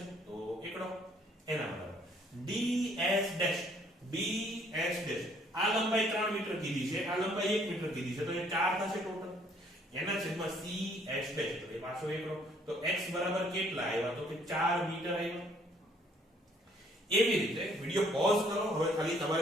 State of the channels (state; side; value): normal; both; correlation 0.63